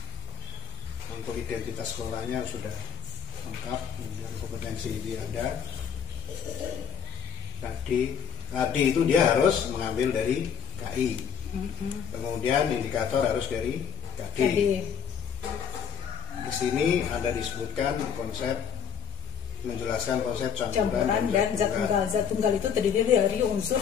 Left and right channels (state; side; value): quieter; right; 7.8 dB